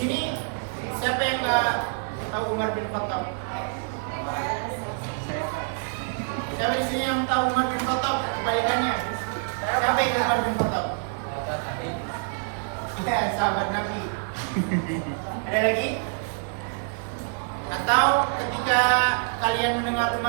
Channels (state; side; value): silent; left; 61 dB below the other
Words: siapa yang nggak tahu Umar bin Khattab? Siapa di sini yang tahu Umar bin Khattab? Kebalikannya, siapa yang Umar bin Khattab? Ya, sahabat Nabi. Ada lagi? Atau ketika kalian mendengar